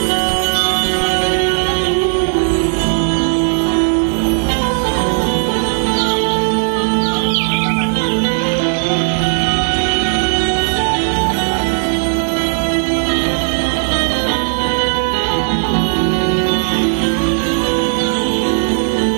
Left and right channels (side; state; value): left; silent; 68 dB below the other